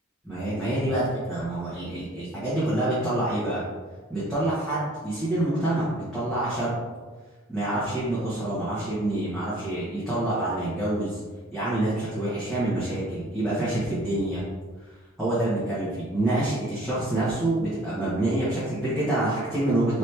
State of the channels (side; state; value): both; normal; correlation 0.54